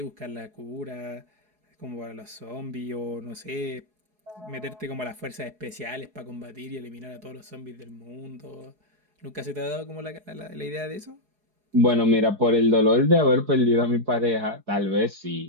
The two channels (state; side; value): late; left; 4.7 ms